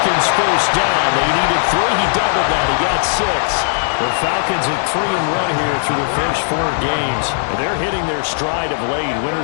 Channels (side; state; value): right; silent; digital silence